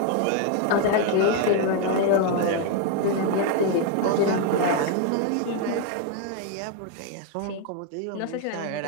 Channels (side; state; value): both; different; correlation 0.01